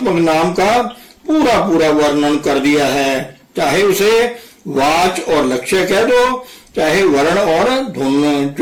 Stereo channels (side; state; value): both; identical; correlation 1.00